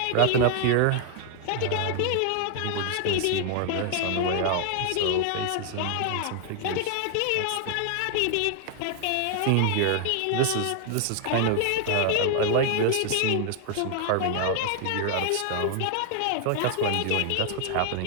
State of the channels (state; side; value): different; both; correlation 0.00